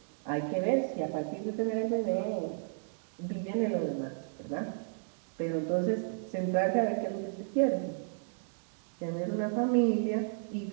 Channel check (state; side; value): silent; left; digital silence